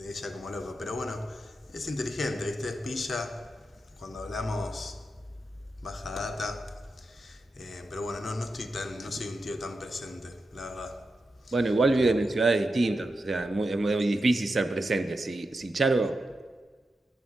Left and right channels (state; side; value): normal; both; correlation 0.89